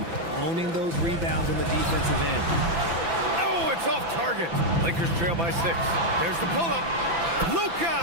Owning those rebounds on the defensive end. Oh, it's off target. Lakers trail by 6. There's the pull-up.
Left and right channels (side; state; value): left; late; 6.0 ms